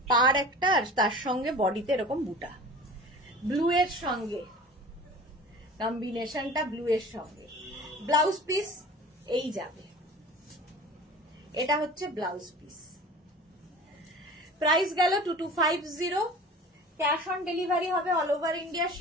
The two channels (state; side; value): normal; both; correlation 0.40